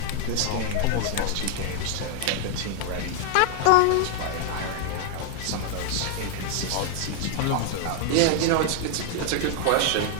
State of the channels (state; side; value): different; both; correlation 0.00